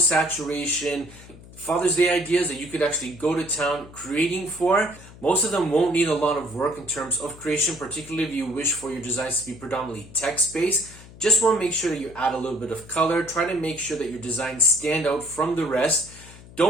Father's Day ideas that you could actually go to town creating for. Most of them won't need a lot of work in terms of creation, particularly if you wish for your designs to be predominantly text-based. Just want to make sure that you add a little bit of color. Try to make sure that your designs stand out from the rest.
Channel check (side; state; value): left; noise; hum, 19 dB below the sound